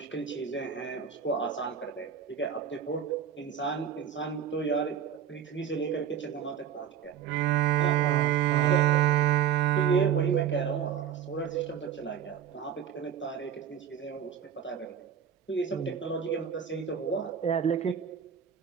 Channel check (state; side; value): quieter; left; 8.5 dB